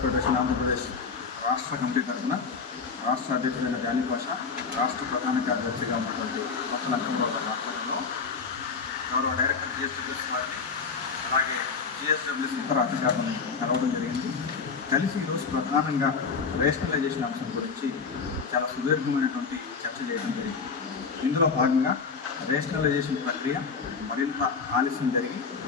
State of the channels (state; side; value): quieter; right; 5.2 dB